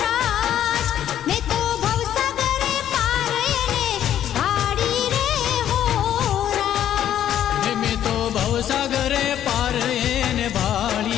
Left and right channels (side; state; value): right; quieter; 10.9 dB